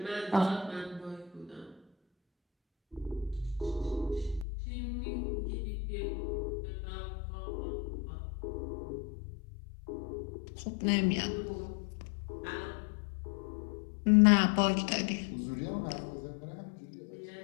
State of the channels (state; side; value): drops out; right; at 4.5 s